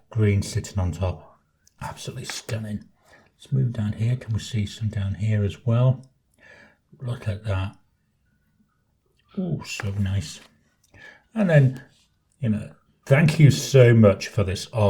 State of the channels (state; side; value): identical; both; correlation 1.00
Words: green sitting on top. Absolutely stunning. Let's move down here. Can we see some down here as well? Look at that. Oh, so nice. And then, you know, thank you so much for this